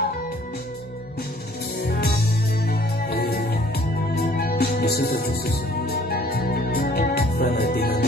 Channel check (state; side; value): normal; both; correlation 0.57